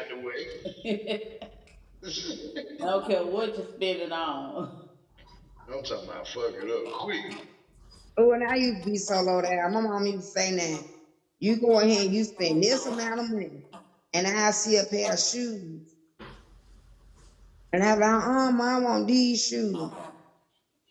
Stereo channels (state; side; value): identical; both; correlation 1.00